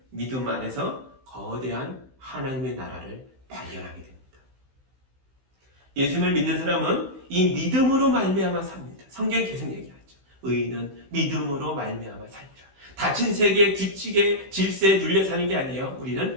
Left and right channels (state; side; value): late; left; 16 ms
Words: 믿음 안에서 거대한 하나님의 나라를 발견하게 됩니다. 예수님을 믿는 사람은 이 믿음으로 말미암아 삽니다. 성경이 계속 얘기하죠. 의인은 믿음으로 말미암아 살리라. 닫힌 세계의 규칙의 질서에 눌려 사는 게 아니에요.